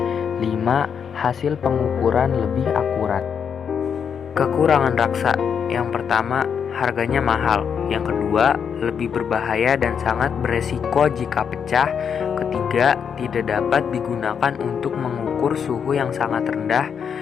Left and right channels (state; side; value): quieter; right; 7.2 dB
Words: 5. Hasil pengukuran lebih akurat. Kekurangan raksa: yang pertama, harganya mahal. Yang kedua, lebih berbahaya dan sangat beresiko jika pecah. Ketiga, tidak dapat digunakan untuk mengukur suhu yang sangat rendah,